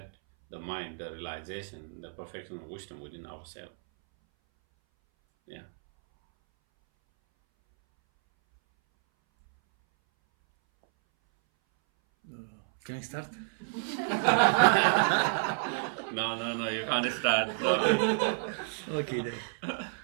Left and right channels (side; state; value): left; silent; 58 dB below the other